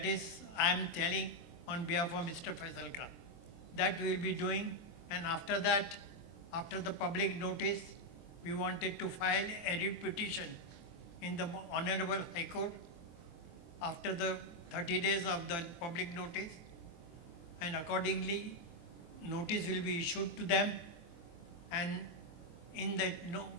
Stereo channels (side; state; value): right; late; 23 ms